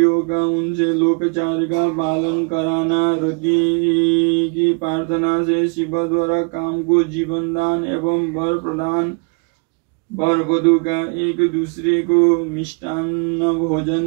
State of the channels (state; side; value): quieter; left; 37.2 dB